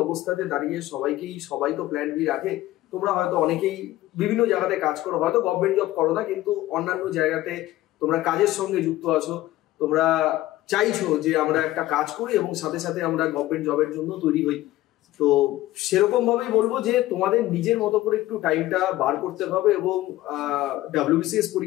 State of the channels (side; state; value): right; quieter; 16.0 dB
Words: অবস্থাতে দাঁড়িয়ে সবাই তো প্ল্যান বি রাখে। তোমরা হয়তো অনেকেই বিভিন্ন জায়গাতে কাজ করো, হয়তো গভর্নমেন্ট জব করো না, কিন্তু অন্যান্য জায়গাতে তোমরা কাজের সঙ্গে যুক্ত আছো, তোমরা চাইছো যে আমরা একটা কাজ করি এবং সাথে সাথে আমরা গভর্নমেন্ট জবের জন্য তৈরি হই, তো সেরকম ভাবেই বলবো যে তোমাদের নিজের মতো করে একটু টাইমটা বার করতে হবে। এবং WBCS